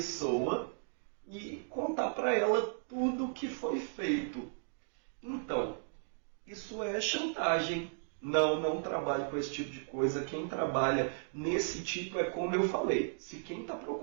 e contar para ela tudo o que foi feito. Então, isso é chantagem. Não trabalhe com esse tipo de coisa. Quem trabalha nesse tipo é como eu falei. Se quem está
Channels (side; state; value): left; silent; digital silence